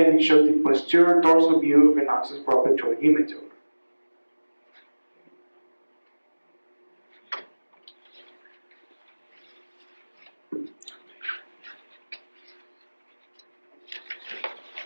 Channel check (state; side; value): inverted; both; correlation -1.00